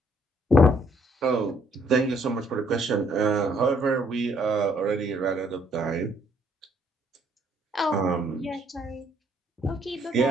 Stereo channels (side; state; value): both; normal; correlation 0.67